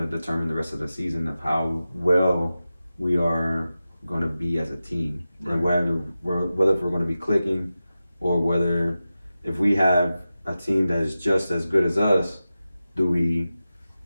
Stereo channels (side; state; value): both; inverted; correlation -0.93